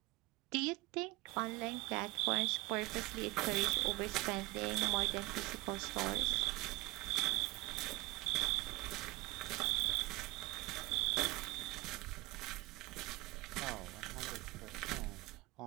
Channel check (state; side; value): quieter; left; 22.2 dB